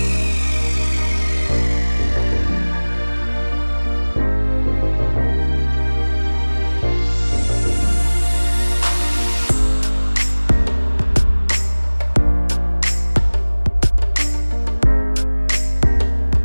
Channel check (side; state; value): both; inverted; correlation -1.00